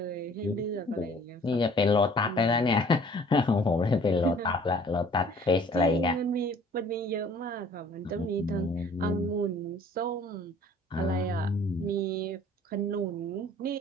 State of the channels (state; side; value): normal; both; correlation 0.53